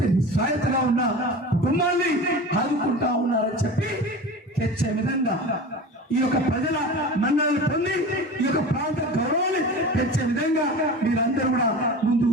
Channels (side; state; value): both; normal; correlation 0.33